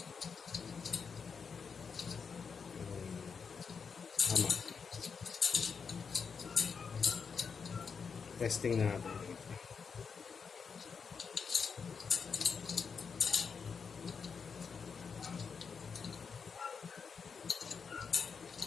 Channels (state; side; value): quieter; right; 5.8 dB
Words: Tama. Testing natin.